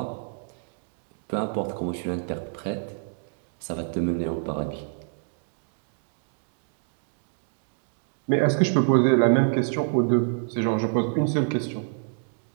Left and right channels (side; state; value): left; silent; digital silence